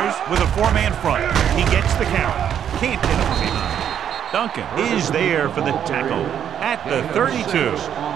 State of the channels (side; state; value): left; quieter; 9.1 dB